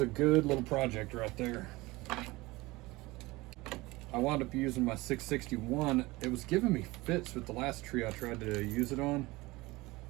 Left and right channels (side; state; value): left; quieter; 21.3 dB